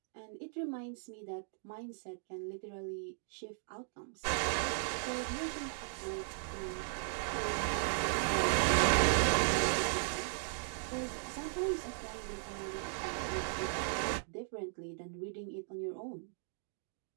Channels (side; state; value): left; silent; digital silence